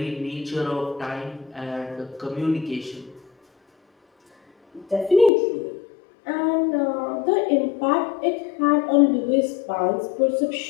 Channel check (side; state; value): right; drops out; at 5.3 s